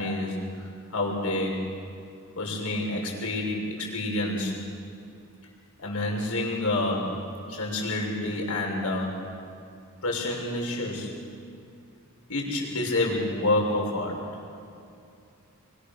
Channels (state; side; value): normal; both; correlation 0.10